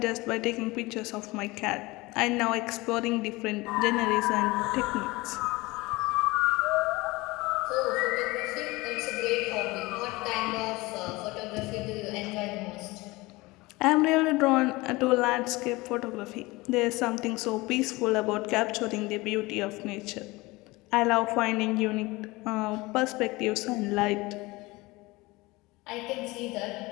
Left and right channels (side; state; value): right; quieter; 22.0 dB